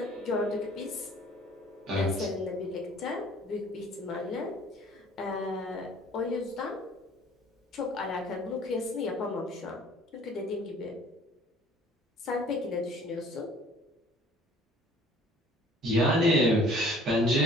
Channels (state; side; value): normal; both; correlation 0.53